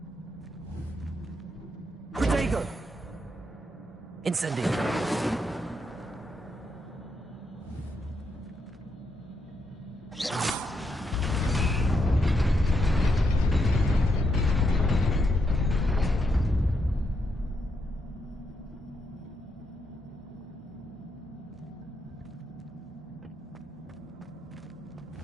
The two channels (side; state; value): both; normal; correlation 0.80